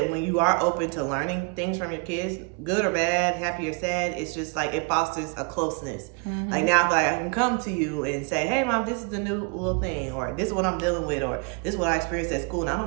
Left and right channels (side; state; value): left; quieter; 34.1 dB